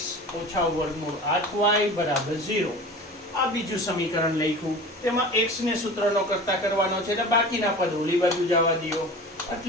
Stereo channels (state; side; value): normal; both; correlation 0.36